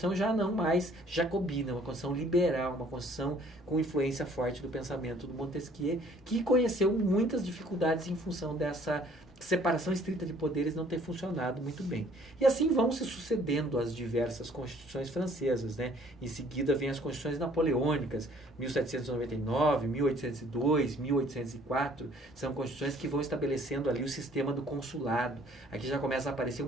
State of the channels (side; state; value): both; normal; correlation 0.58